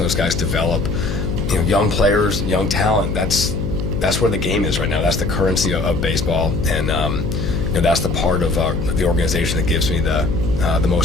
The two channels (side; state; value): left; noise; hum, 4 dB below the sound